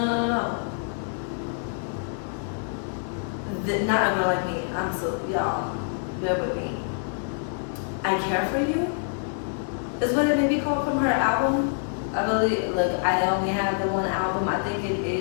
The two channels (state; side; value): silent; right; digital silence